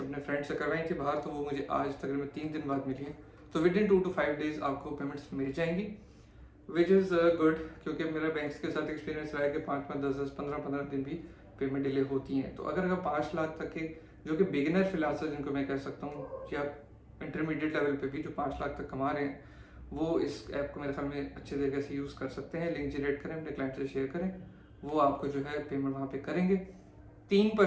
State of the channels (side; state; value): both; identical; correlation 1.00